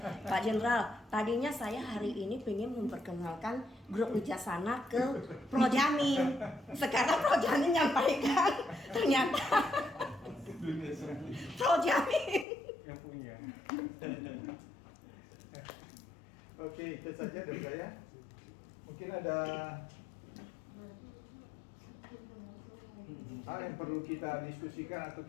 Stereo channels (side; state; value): right; drops out; at 12.5 s